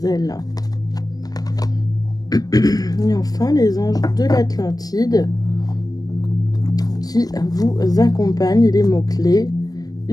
ailes. Et enfin, les anges de l'Atlantide qui vous accompagnent. Les mots-clés.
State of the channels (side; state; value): right; late; 0.19 ms